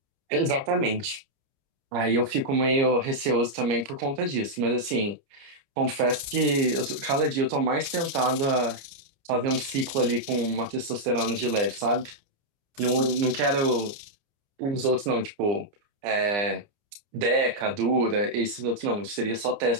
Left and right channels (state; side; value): late; left; 29 ms